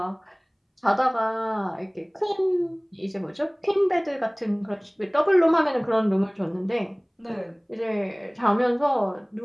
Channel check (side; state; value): both; identical; correlation 1.00